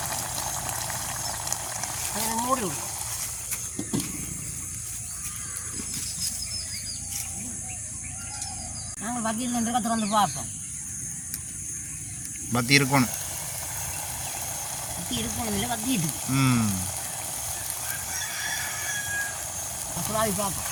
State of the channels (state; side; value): identical; both; correlation 1.00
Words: அதை மூடி விடும். நாங்கள் வத்தியில் நின்று திறந்து பார்ப்போம். பத்தி இருக்கணும். பத்தி இருக்கணும் இல்லை, வத்தி இருக்கு. சுறாவி பார்ப்போம்.